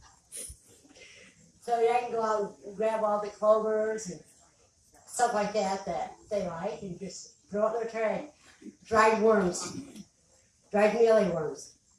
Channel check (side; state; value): both; identical; correlation 1.00